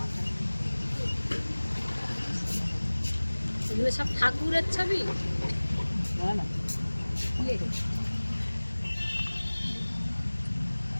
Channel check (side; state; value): both; inverted; correlation -1.00